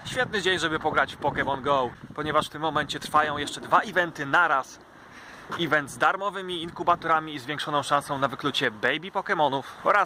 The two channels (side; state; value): both; identical; correlation 1.00